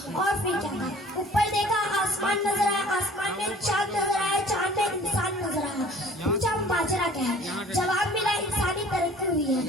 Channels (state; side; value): normal; both; correlation 0.49